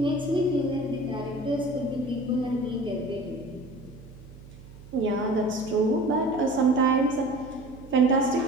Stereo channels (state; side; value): noise; right; hum, 19 dB below the sound